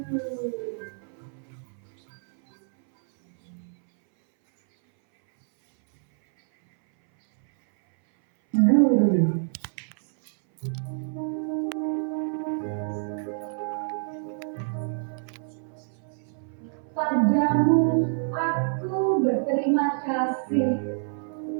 Padamu aku berterima kasih.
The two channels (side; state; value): left; silent; 59 dB below the other